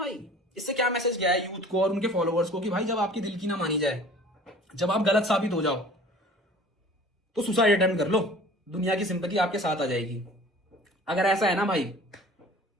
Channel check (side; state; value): both; normal; correlation 0.46